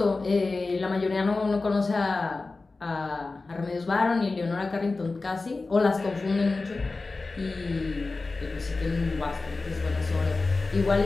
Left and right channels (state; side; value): quieter; right; 3.6 dB